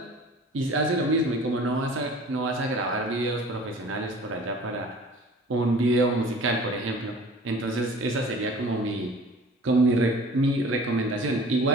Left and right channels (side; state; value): both; normal; correlation 0.46